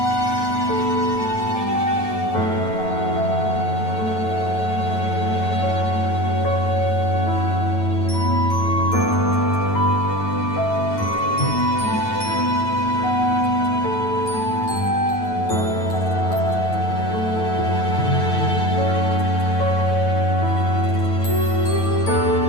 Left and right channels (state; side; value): late; right; 9.3 ms